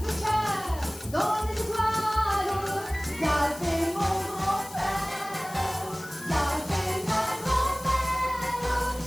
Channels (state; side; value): noise; left; hiss, 16 dB below the sound